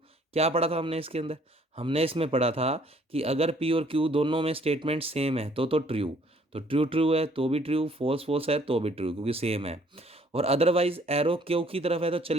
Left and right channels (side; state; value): both; normal; correlation 0.61